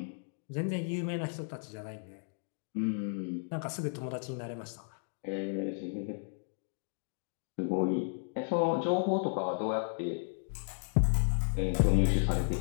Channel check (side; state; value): right; silent; digital silence